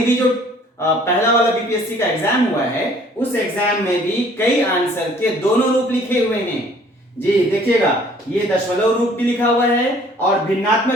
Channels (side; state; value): both; normal; correlation 0.56